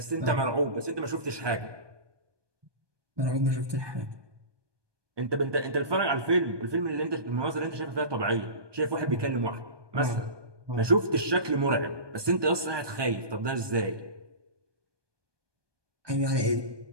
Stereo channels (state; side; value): late; left; 1.2 ms